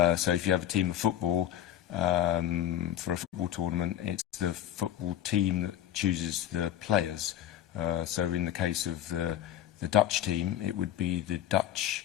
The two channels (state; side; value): quieter; right; 11.4 dB